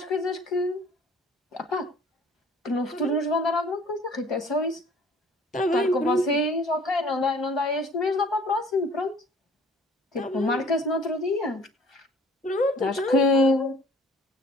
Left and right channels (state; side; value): normal; both; correlation 0.52